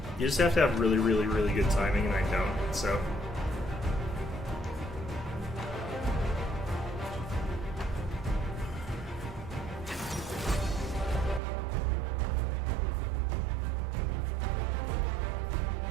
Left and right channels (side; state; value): left; drops out; at 11.4 s